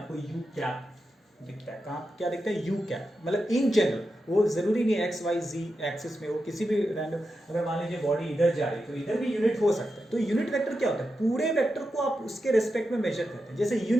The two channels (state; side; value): normal; both; correlation 0.89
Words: यू कैप दिखता है, कहाँ क्या दिखता है, यू कैप। मतलब इन जनरल, वो जरूरी नहीं एक्स वाई जी एक्सिस में हो, किसी भी रैंडम, अगर मान लीजिए बॉडी इधर जा रही है तो इधर भी यूनिट हो सकता है। तो यूनिट वेक्टर क्या होता है, पूरे वेक्टर को आप उसके रेस्पेक्ट में मेजर करते हैं। जैसे